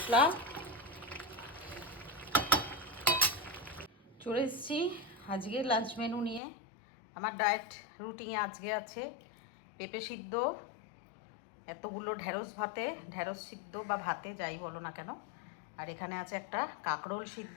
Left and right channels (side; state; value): right; drops out; at 6.4 s